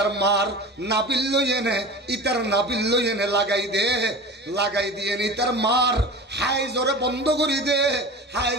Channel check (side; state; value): both; normal; correlation 0.34